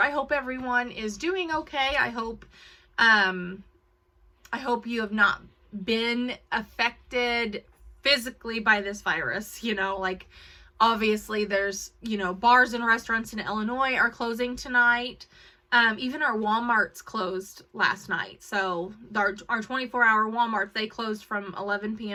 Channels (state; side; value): identical; both; correlation 1.00